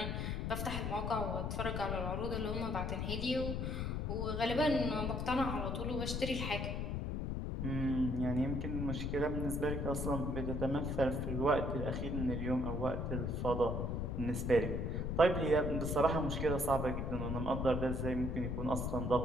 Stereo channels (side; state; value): left; noise; rumble, 1 dB below the sound